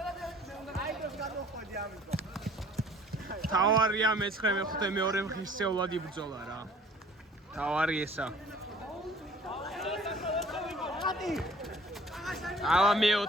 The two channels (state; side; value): normal; both; correlation 0.52